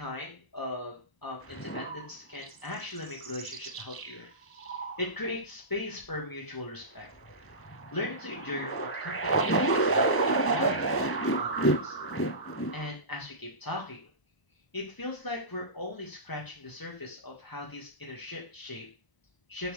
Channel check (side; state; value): right; late; 1.0 ms